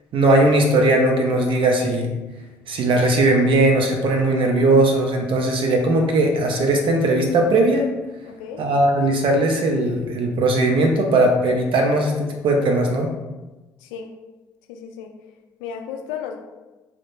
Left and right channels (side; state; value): both; normal; correlation 0.47